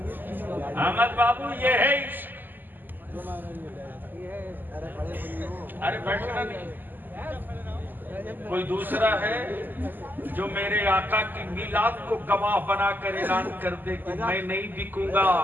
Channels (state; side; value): late; left; 0.089 ms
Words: अहमद बाबू, ये है इश्क। अरे बैठना नहीं। कोई दूसरा है जो मेरे आका की मिलाद को गवाह बनाकर ऐलान कर दे कि मैं नहीं बिकूंगा,